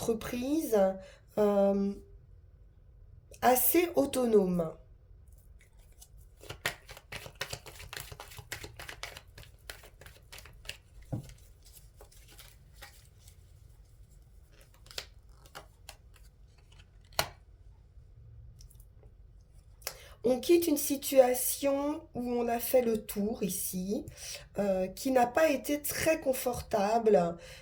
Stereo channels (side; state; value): both; identical; correlation 1.00